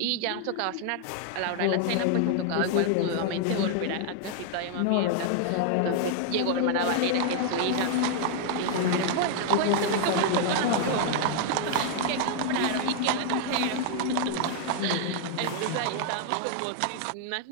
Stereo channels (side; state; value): both; different; correlation 0.00